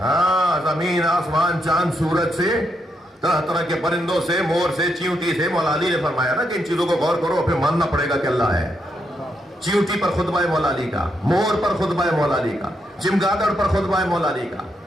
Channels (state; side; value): normal; both; correlation 0.80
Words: ہاں، زمین آسمان چاند سورج سے، طرح طرح کے پرندوں سے، مور سے، چیونٹی سے. مولا علی نے فرمایا نا کہ ان چیزوں کو غور کرو، پھر ماننا پڑے گا کہ اللہ ہے. چیونٹی پر خطبہ مولا علی کا، مور پر خطبہ مولا علی کا، چمگادڑ پر خطبہ مولا علی کا،